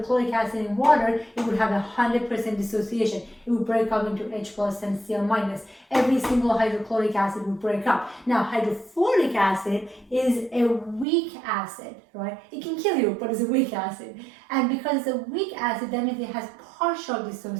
acid in water, it would have 100% dissociation. It would break up into H plus and Cl minus. Every single hydrochloric acid would break up. Now, hydrofluoric acid is a weak acid, right? It can kill you, but it's a weak acid. And because it's a weak acid, that means it has partial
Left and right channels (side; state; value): left; drops out; at 11.1 s